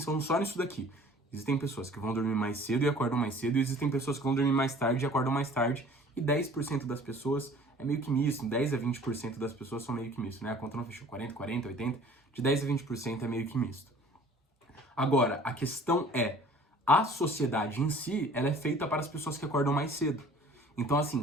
só nisso daqui. Existem pessoas que vão dormir mais cedo e acordam mais cedo, e existem pessoas que vão dormir mais tarde e acordam mais tarde, e 10% das pessoas é meio que misto, 10 a 20% das pessoas são meio que misto, né? A conta não fechou, 40, 80, de 10 a 20% é meio que misto. Agora, a questão é, a sociedade em si, ela é feita para as pessoas que acordam mais cedo. Então,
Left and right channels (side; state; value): both; normal; correlation 0.49